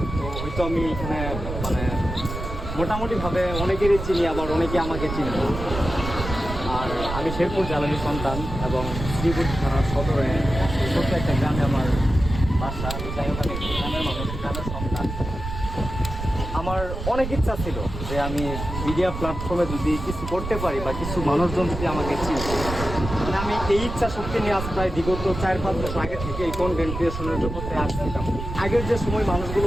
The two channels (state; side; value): noise; right; rumble, 7 dB below the sound